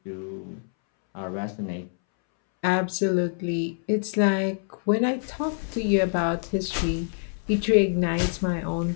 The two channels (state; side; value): silent; right; 61 dB below the other